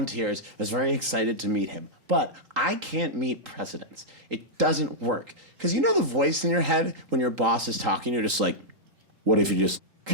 I was very excited to meet him. But I can't meet presidents. It doesn't work. Because you know the voice in your head when your boss is talking, you're just like, what if you just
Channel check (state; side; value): late; left; 3.8 ms